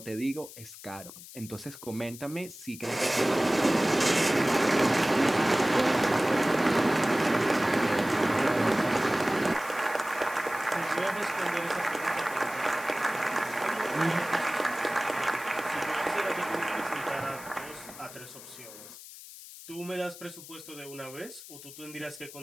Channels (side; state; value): left; noise; hiss, 16 dB below the sound